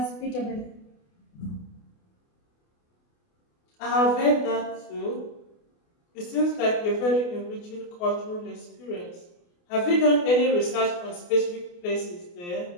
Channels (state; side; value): late; right; 28 ms